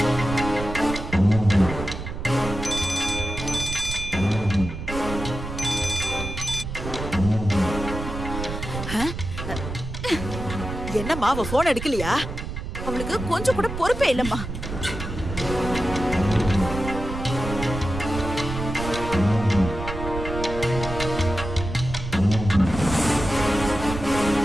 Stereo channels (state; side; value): noise; right; rumble, 7 dB below the sound